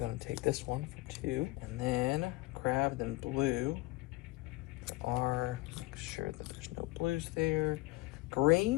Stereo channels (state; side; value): quieter; right; 21.5 dB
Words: take this one for 2. And then crab, then blue. Make sure that there's no blues there.